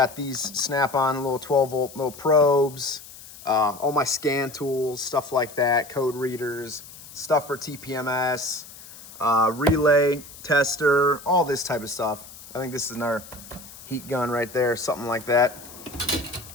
these snap-on little 12-volt little probes. All my scan tools, stuff like that, code readers, stuff for TPMS, relay, tester, all this type of stuff. I think this is another heat gun right there, something like that.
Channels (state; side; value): noise; left; hiss, 17 dB below the sound